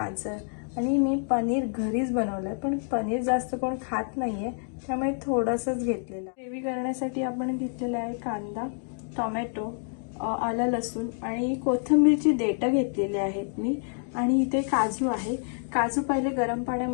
आणि मी पनीर घरीच बनवलंय, पण पनीर जास्त कोण खात नाहीये त्यामुळे थोडंसंच घेतलेलं। ग्रेव्ही करण्यासाठी आपण घेतलेला आहे कांदा, टोमॅटो, आलं लसूण आणि कोथिंबीरची देठं घेतलेली आहेत मी। आणि इथे काजू आहे। काजू पहिले गरम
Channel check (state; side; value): silent; right; 60 dB below the other